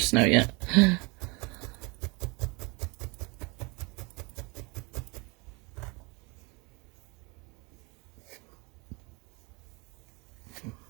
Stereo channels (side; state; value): left; quieter; 28.2 dB